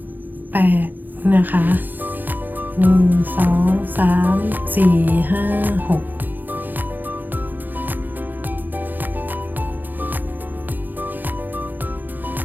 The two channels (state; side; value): late; left; 0.087 ms